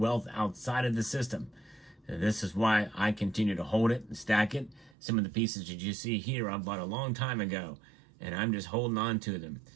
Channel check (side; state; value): left; drops out; at 5.0 s